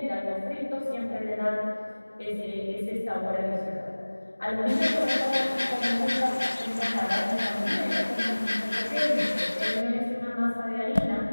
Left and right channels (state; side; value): inverted; both; correlation -1.00